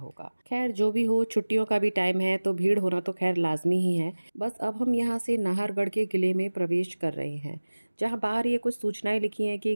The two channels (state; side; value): inverted; both; correlation -1.00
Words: खैर जो भी हो, छुट्टियों का भी टाइम है तो भीड़ होना तो खैर लाजमी ही है। बस अब हम यहाँ से नाहरगढ़ के किले में प्रवेश कर रहे हैं, जहाँ बाहर ये कुछ सूचनाएं लिखी हैं कि